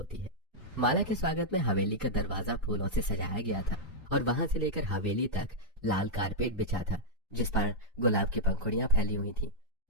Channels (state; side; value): normal; both; correlation -0.05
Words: है। माला के स्वागत में हवेली का दरवाजा फूलों से सजाया गया था और वहां से लेकर हवेली तक लाल कारपेट बिछा था जिस पर गुलाब की पंखुड़ियां फैली हुई थी।